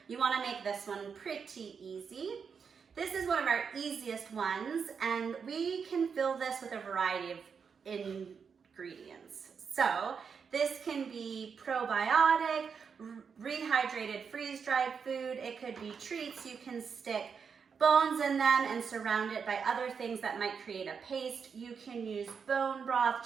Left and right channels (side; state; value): left; quieter; 6.2 dB